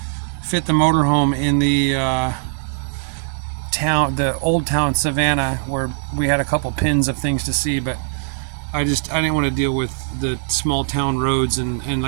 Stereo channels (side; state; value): left; silent; digital silence